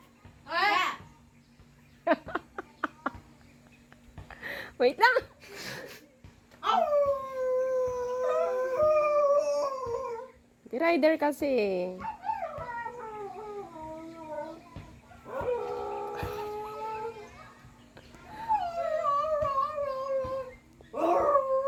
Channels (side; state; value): both; identical; correlation 1.00